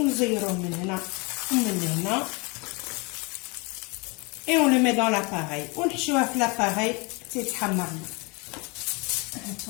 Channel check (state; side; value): quieter; right; 29.1 dB